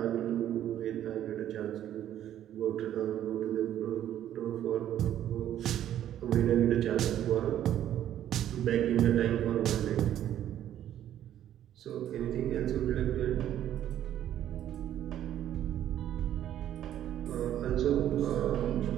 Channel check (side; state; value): left; quieter; 11.3 dB